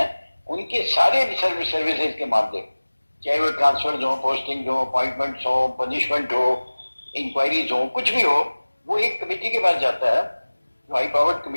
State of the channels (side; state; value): both; inverted; correlation -1.00